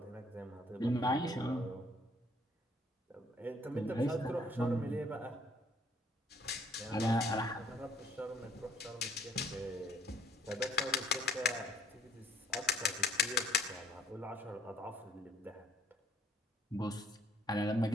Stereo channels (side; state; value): both; normal; correlation 0.60